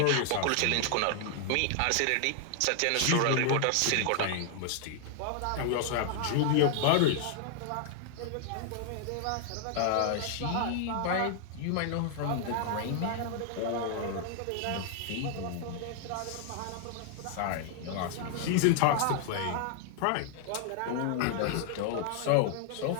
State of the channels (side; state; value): both; different; correlation 0.00